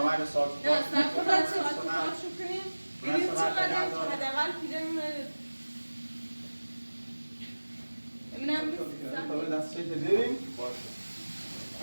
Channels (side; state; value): both; inverted; correlation -1.00